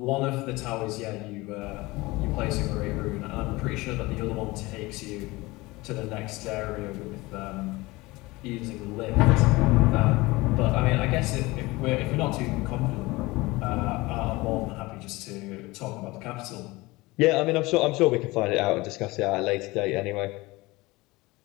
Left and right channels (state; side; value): quieter; right; 21.6 dB